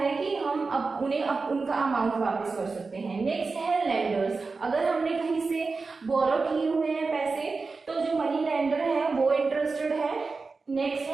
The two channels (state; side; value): quieter; left; 4.2 dB